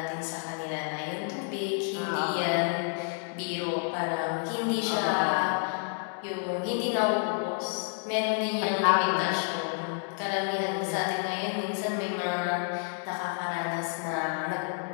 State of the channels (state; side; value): silent; right; 58 dB below the other